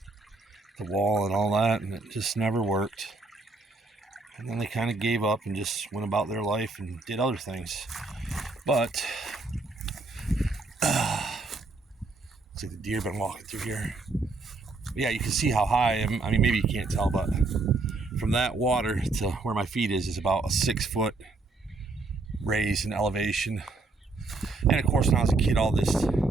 the wall and all that, and it just never worked. And then they kind of gave up and just went about their life and did other things. But looks like the deer been walking through here. But yeah, you can see how high I am. I mean, maybe you can't tell, but from that water to where my feet is about a 6 foot raise in elevation. And of course, when I was a kid, all this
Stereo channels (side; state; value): left; quieter; 3.5 dB